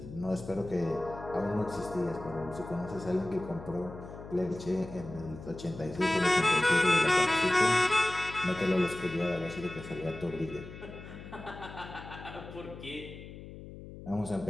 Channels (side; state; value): left; noise; hum, 13 dB below the sound